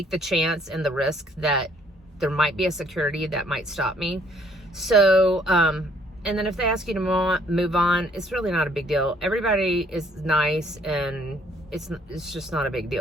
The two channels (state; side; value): normal; both; correlation 0.64